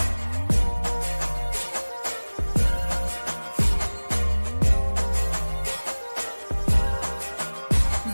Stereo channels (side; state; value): both; inverted; correlation -1.00